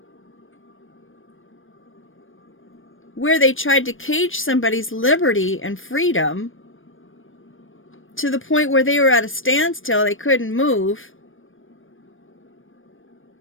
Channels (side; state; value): right; late; 0.59 ms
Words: where they tried to cage somebody's liberty and freedom to the point where they were at a standstill, they couldn't move,